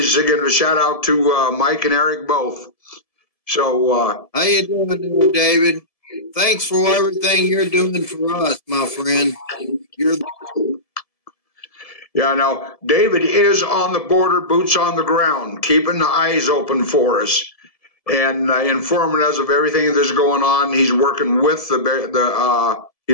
giving a shout out to Mike and Eric both. So, how you doing, David? Thanks for everything you're doing for us, my friend. Yeah, now, David is on the border, boots on the ground, keeping the eyes open for us and informing us of everything that's going on. He's working with Border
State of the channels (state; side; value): late; right; 1.7 ms